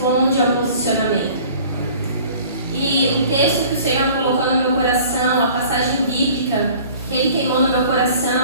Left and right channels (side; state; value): both; inverted; correlation -0.48